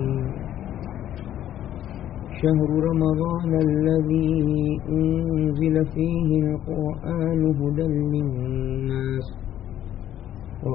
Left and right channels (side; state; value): right; quieter; 11.5 dB